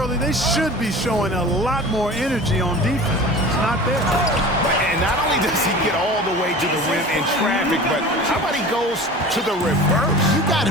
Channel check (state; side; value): normal; both; correlation 0.38